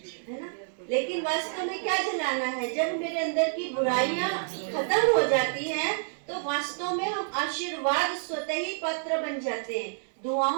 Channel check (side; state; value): left; silent; digital silence